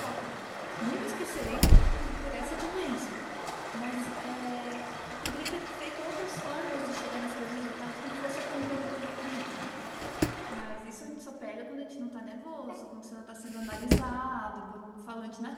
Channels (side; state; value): both; identical; correlation 1.00